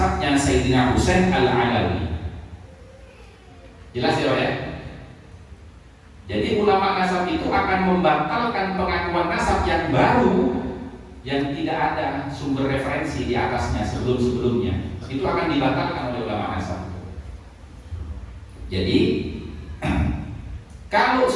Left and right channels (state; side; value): identical; both; correlation 1.00